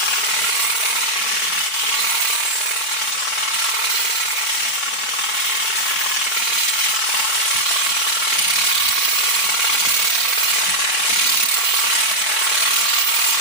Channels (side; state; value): right; late; 3.6 ms